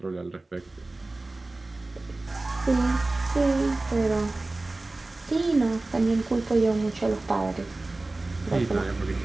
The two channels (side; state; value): left; quieter; 3.0 dB